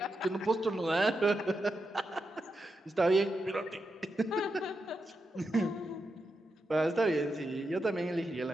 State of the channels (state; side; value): normal; both; correlation 0.87